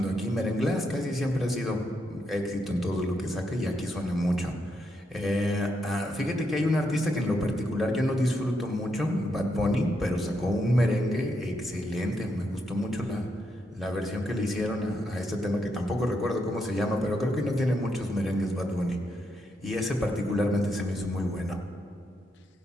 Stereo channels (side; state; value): both; normal; correlation 0.80